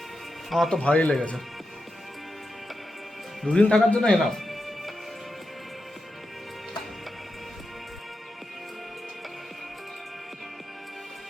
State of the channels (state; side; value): normal; both; correlation 0.88